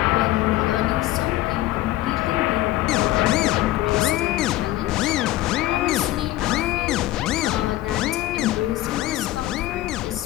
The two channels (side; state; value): right; quieter; 16.0 dB